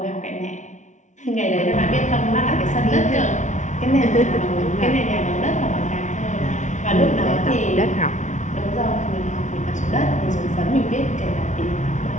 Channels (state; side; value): late; right; 0.36 ms